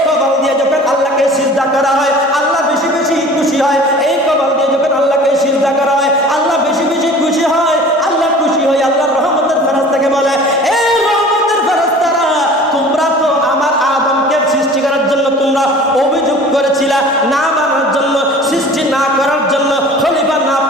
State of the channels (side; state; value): both; normal; correlation 0.44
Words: কপাল দিয়ে যখন আল্লাহকে সিজদা করা হয় আল্লাহ বেশি বেশি খুশি হয় এই কপাল দিয়ে যখন আল্লাহকে সিজদা করা হয় আল্লাহ বেশি বেশি খুশি হয় আল্লাহ খুশি হয় আল্লাহর রহমতের ফেরেশতাকে বলে এই রহমতের ফেরেশতারা তোমরা তো আমার আদমকে সৃষ্টি করার জন্য তোমরা অভিযোগ করেছিলা না বানার জন্য সৃষ্টি না করার জন্য খলিফা না